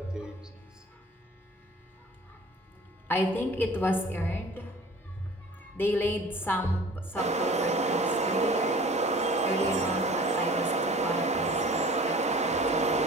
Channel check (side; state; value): both; normal; correlation 0.45